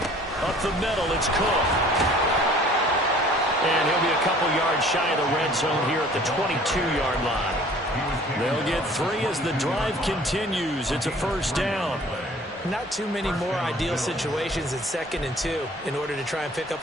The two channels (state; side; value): normal; both; correlation 0.51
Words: Up the middle, it's Cook. And he'll be a couple yards shy of the red zone here at the 22-yard line. They'll get 3 as the drive continues. It's a first down. Not too many more ideal situations in 2nd and 2 in order to try and pick